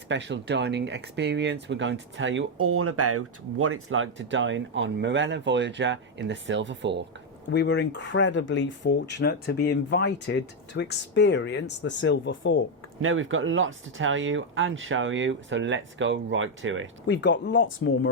dining experience. We're going to tell you all about what it's like to dine on Marella Voyager in the Silver Fork. We were incredibly fortunate to be invited to experience the Silver Fork. Now we've got lots to tell you and show you, so let's go right to it. We've got lots more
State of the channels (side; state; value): both; normal; correlation 0.03